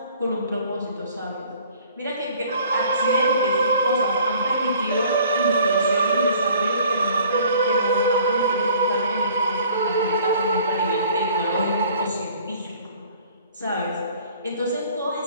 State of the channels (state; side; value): inverted; both; correlation -0.53